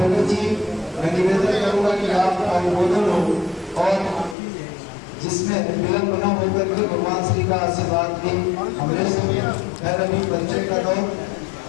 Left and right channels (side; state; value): right; drops out; at 4.4 s